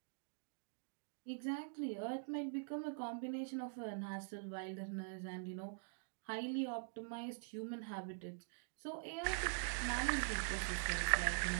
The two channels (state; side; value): silent; left; digital silence